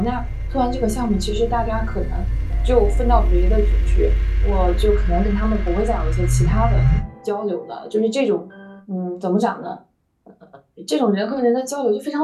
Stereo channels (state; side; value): identical; both; correlation 1.00